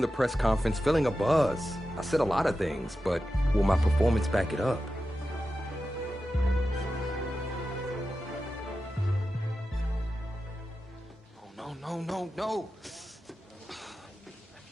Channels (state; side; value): normal; both; correlation 0.92